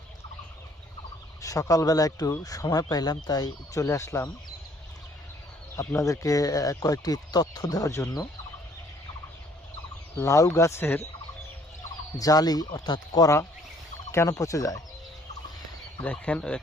সকালবেলা একটু সময় পাইলাম, তাই চলে আসলাম আপনাদেরকে কয়েকটি তথ্য দেওয়ার জন্য। লাউ গাছের জালি অর্থাৎ করা কেন পচে যায়? দেখেন,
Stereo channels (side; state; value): both; normal; correlation 0.61